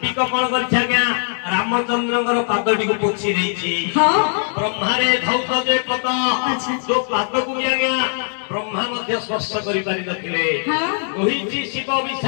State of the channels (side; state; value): right; silent; 66 dB below the other